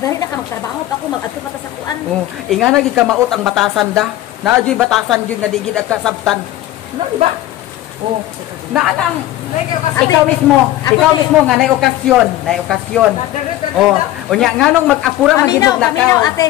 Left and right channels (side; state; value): right; quieter; 14.7 dB